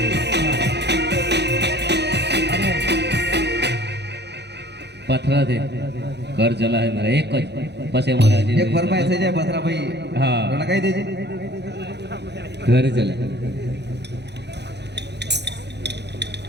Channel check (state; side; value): late; left; 0.50 ms